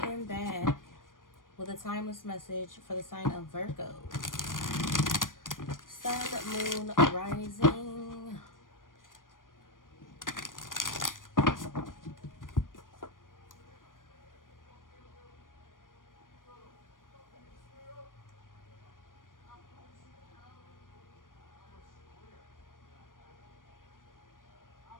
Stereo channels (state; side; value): late; right; 0.90 ms